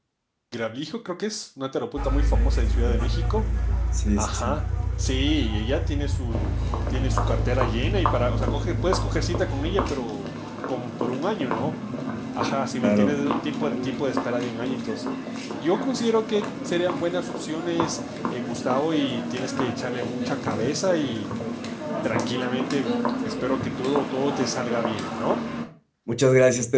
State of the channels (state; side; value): identical; both; correlation 1.00